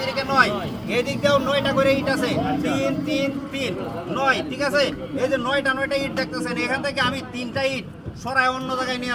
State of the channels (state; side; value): identical; both; correlation 1.00